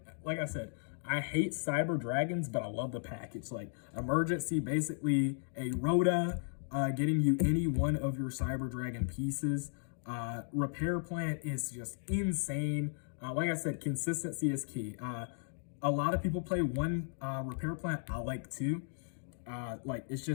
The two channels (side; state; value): right; silent; digital silence